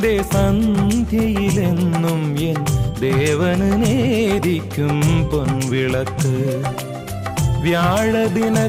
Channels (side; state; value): both; identical; correlation 1.00